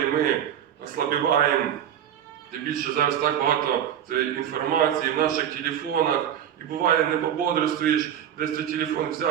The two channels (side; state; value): left; quieter; 9.9 dB